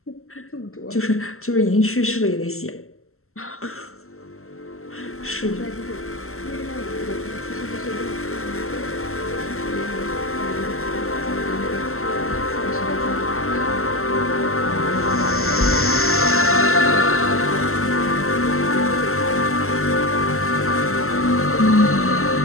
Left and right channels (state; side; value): late; right; 0.62 ms